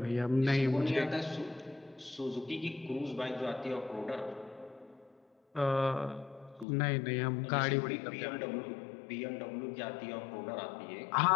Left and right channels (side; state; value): right; drops out; at 6.7 s